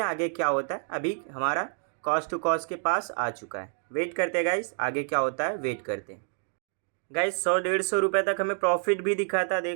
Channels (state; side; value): silent; left; 57 dB below the other